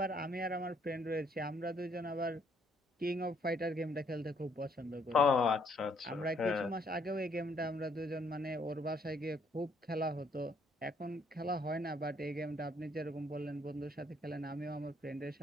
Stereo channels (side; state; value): both; normal; correlation 0.67